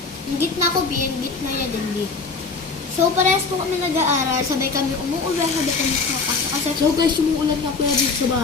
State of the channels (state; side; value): quieter; right; 4.4 dB